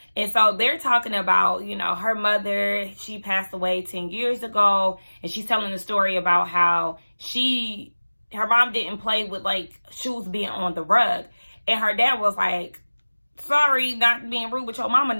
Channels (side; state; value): both; inverted; correlation -1.00